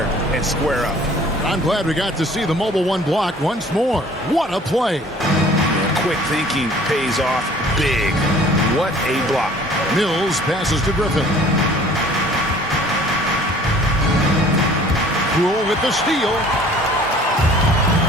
and square up. I'm glad we got to see the mobile 1 block once more. What a play. Quick thinking pays off big. What a block. Mills passes to Griffin. Poole with the steal.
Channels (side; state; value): both; normal; correlation 0.51